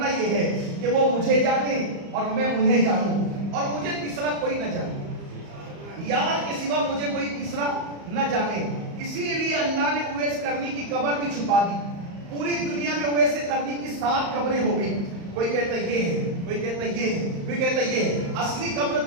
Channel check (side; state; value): left; late; 35 ms